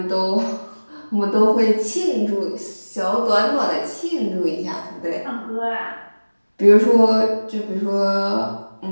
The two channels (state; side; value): inverted; both; correlation -1.00